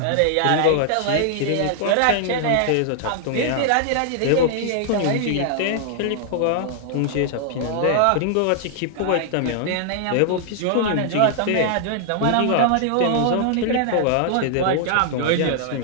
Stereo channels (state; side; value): different; both; correlation -0.01